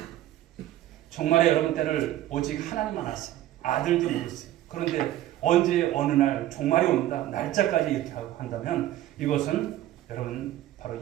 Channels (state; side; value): quieter; left; 13.9 dB